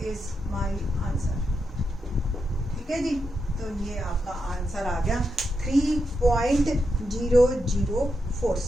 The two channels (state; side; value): normal; both; correlation 0.85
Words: is my answer. ठीक है जी, तो ये आपका आंसर आ गया